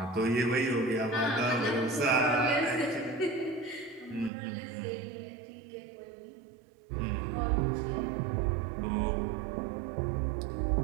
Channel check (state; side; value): drops out; left; at 4.3 s